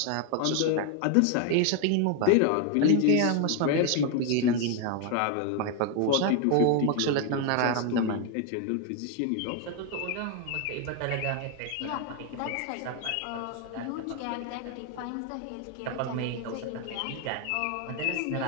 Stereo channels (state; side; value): different; both; correlation 0.01